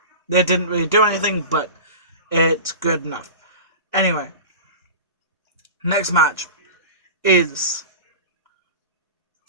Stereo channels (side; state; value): both; inverted; correlation -0.32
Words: They didn't really do anything, but it's good enough. Anyway, next match is